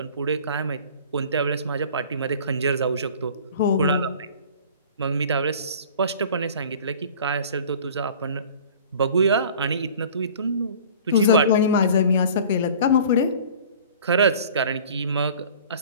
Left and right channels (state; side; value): inverted; both; correlation -0.45